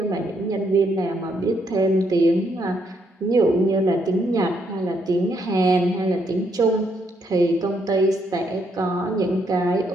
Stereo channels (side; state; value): both; normal; correlation 0.74